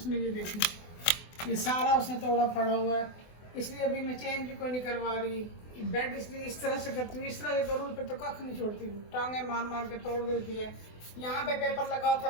ये देखी ये सारा उसने तोड़ा फाड़ा हुआ है। इसलिए अभी मैं चेंज भी कोई नहीं करवा रही। बेड इसलिए इस तरह से करती हूँ, इस तरह से करूँ पे तो कख नहीं छोड़ती हूँ, टांगे मार मार के तोड़ देती है। यहाँ पे पेपर लगा था,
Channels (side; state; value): right; late; 24 ms